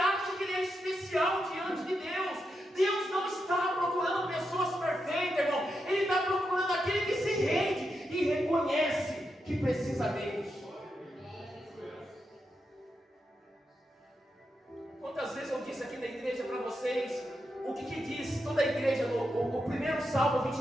que ele é especial diante de Deus. Deus não está procurando pessoas perfeitas, irmão. Ele está procurando aquele que se rende e reconhece que precisa dele. Quantas vezes eu disse aqui na igreja para vocês o que diz toda a igreja no primeiro Salmo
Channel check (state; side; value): normal; both; correlation 0.85